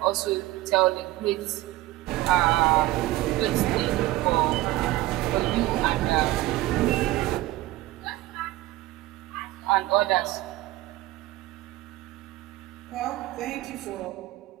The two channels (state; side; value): quieter; left; 17.3 dB